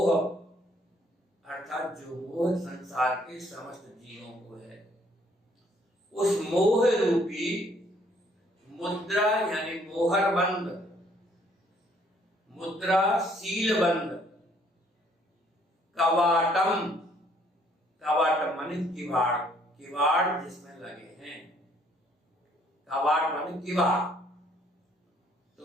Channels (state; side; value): normal; both; correlation 0.64